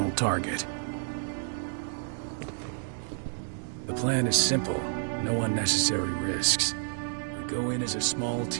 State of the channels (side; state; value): left; silent; digital silence